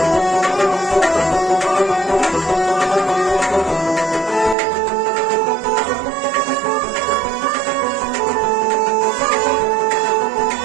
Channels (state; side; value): drops out; left; at 4.5 s